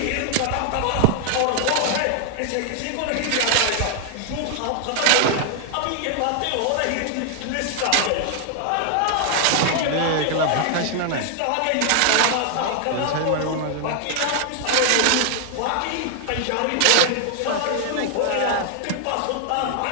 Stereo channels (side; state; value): both; different; correlation 0.00